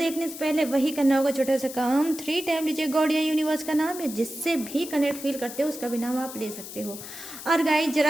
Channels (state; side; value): noise; left; hiss, 12 dB below the sound